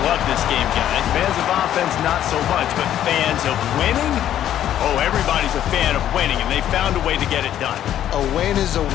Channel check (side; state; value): right; quieter; 11.2 dB